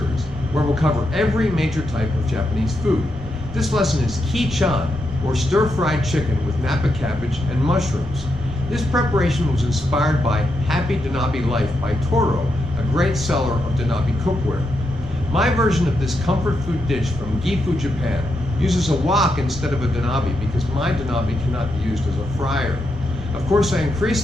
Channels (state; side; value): normal; both; correlation 0.83